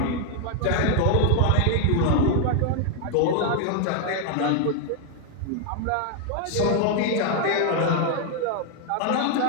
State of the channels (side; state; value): both; different; correlation 0.00